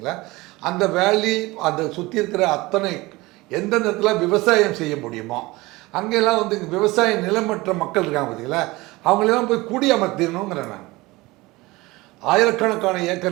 அந்த வேலி அந்த சுற்றி இருக்கிற அத்தனை எந்த நேரத்தில் விவசாயம் செய்ய முடியுமோ அங்கெல்லாம் வந்து இங்கே விவசாய நிலமற்ற மக்கள் இருக்காங்க பார்த்தீங்களா, அவங்களெல்லாம் போய் குடியமர்த்திடணுங்கிறேன் நான். ஆயிரக்கணக்கான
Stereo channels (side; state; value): left; quieter; 21.3 dB